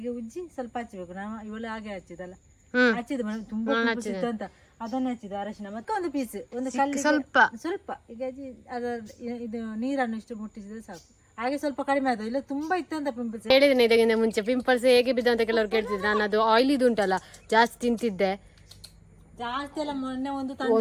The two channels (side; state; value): both; identical; correlation 1.00